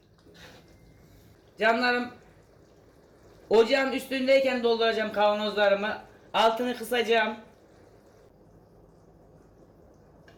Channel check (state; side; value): identical; both; correlation 1.00